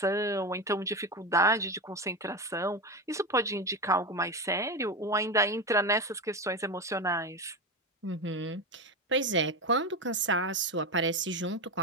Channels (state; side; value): normal; both; correlation 0.18